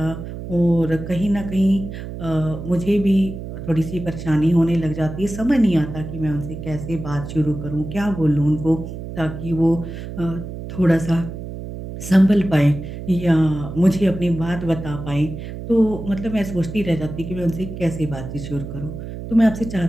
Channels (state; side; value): noise; right; hum, 9 dB below the sound